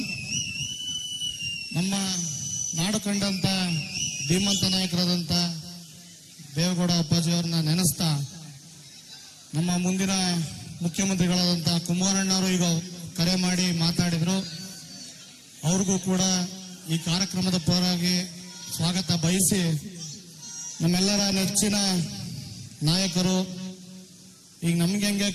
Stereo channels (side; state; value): both; identical; correlation 1.00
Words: ನಮ್ಮ ನಾಡು ಕಂಡಂತ ಧೀಮಂತ ನಾಯಕರಾದಂಥ ದೇವೇಗೌಡ ಅಪ್ಪಾಜಿಯವ್ರನ್ನ ನೆನೆಸ್ತಾ, ನಮ್ಮ ಮುಂದಿನ ಮುಖ್ಯಮಂತ್ರಿಗಳಾದಂಥ ಕುಮಾರಣ್ಣವರು ಈಗ ಕರೆ ಮಾಡಿ ಮಾತಾಡಿದ್ರು. ಅವ್ರಿಗೂ ಕೂಡ ಈ ಕಾರ್ಯಕ್ರಮದ ಪರವಾಗಿ ಸ್ವಾಗತ ಬಯಸಿ, ನಮ್ಮೆಲ್ಲರ ನೆಚ್ಚಿನ ನಾಯಕರು, ಈಗ ನಮ್ಗೆ ಹೆಂಗೆ